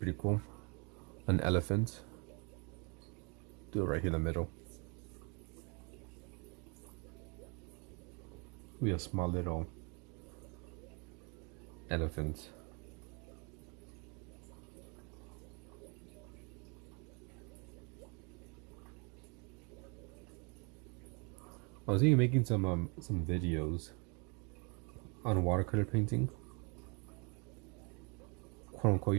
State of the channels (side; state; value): left; quieter; 32.9 dB